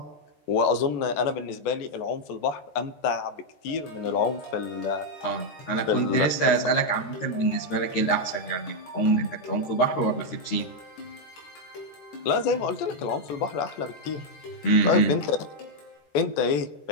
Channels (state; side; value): late; right; 13 ms